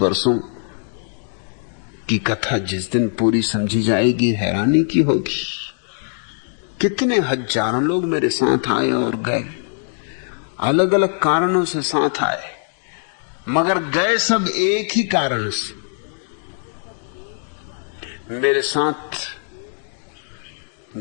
वर्षों की कथा जिस दिन पूरी समझी जाएगी हैरानी की होगी। कितने हजारों लोग मेरे साथ आए और गए, अलग अलग कारणों से साथ आए, मगर गए सब एक ही कारण से। मेरे साथ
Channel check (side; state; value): right; silent; digital silence